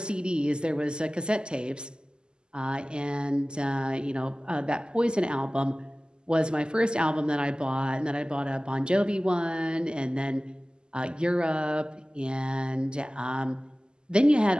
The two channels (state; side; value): late; left; 0.047 ms